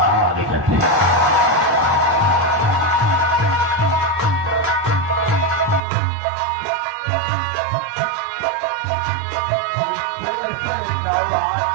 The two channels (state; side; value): drops out; left; at 5.8 s